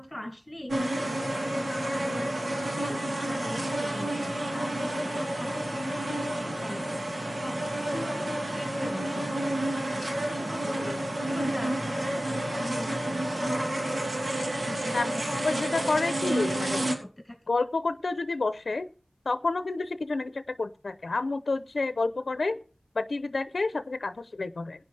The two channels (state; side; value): normal; both; correlation 0.95